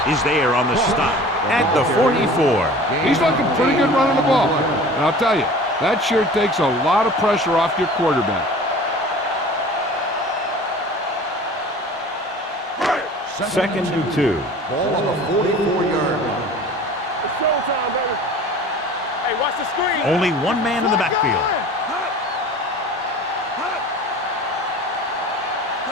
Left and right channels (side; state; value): both; normal; correlation 0.42